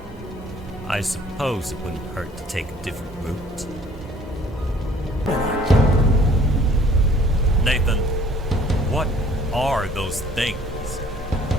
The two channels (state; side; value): normal; both; correlation 0.56